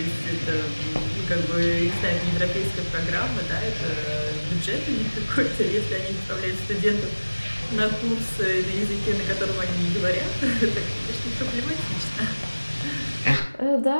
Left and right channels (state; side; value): inverted; both; correlation -1.00